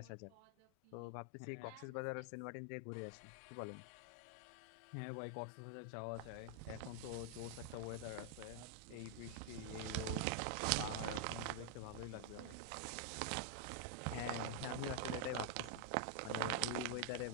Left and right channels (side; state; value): both; different; correlation 0.00